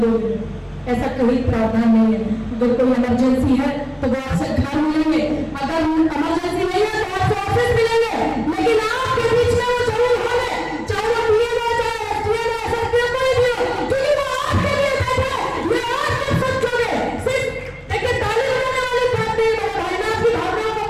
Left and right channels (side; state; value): both; identical; correlation 1.00